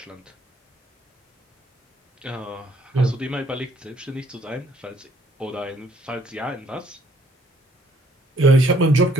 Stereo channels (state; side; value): normal; both; correlation 0.64